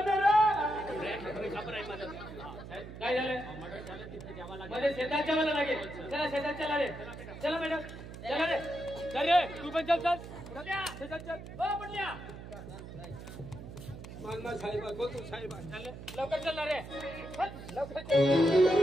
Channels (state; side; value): noise; right; hum, 12 dB below the sound